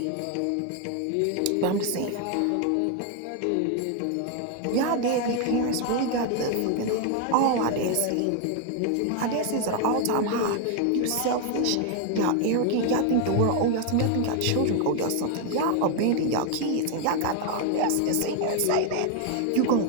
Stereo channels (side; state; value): both; different; correlation 0.01